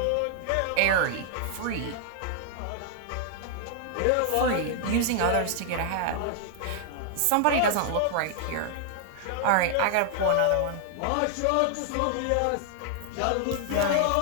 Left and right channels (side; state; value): both; different; correlation 0.00